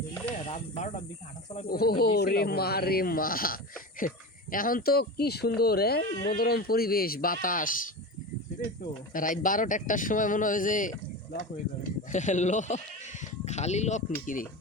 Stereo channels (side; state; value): both; normal; correlation 0.25